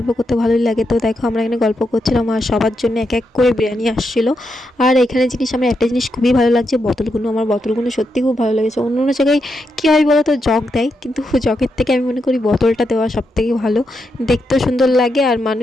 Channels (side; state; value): both; normal; correlation 0.83